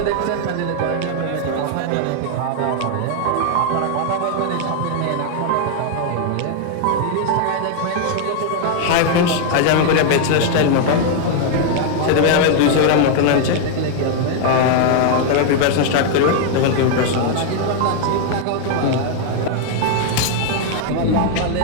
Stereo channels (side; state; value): both; different; correlation 0.00